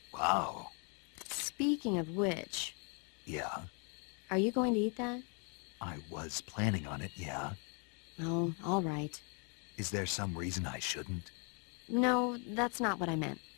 Wow. Speaking of which... Yeah? Are you going to eat that? I was planning on it, yeah. Oh, all right. Is there some reason I shouldn't? No, that's not what I meant.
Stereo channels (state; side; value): quieter; right; 37.4 dB